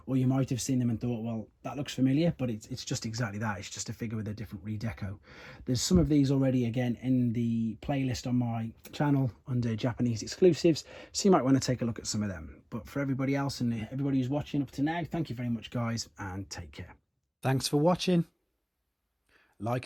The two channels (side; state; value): both; identical; correlation 1.00